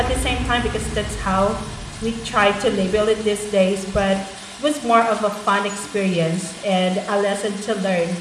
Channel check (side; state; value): both; identical; correlation 1.00